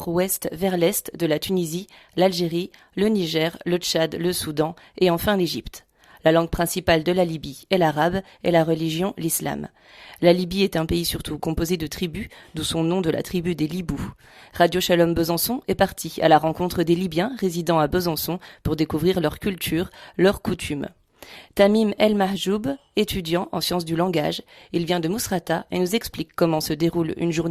vers l'est, de la Tunisie, l'Algérie, le Niger, le Tchad, le Soudan et enfin l'Égypte. La langue principale de la Libye est l'arabe et la religion l'islam. La Libye est un pays surtout composé de tribus, d'où son nom de la tribu des Libous. Radio Shalom Besançon est parti à la rencontre des Libyens résidant à Besançon pour découvrir leur culture, leurs coutumes. Tamim El Mahjoub, étudiant en sciences du langage, il vient de Mousrata et nous explique comment se déroule une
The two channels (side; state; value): both; identical; correlation 1.00